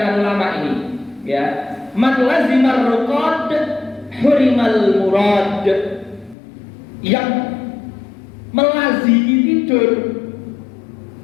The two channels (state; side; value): drops out; right; at 6.4 s